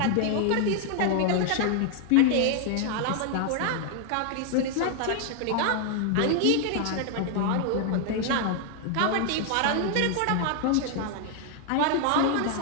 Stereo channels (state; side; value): different; both; correlation 0.00